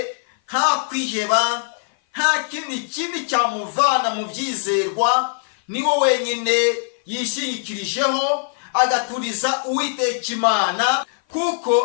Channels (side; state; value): right; silent; 56 dB below the other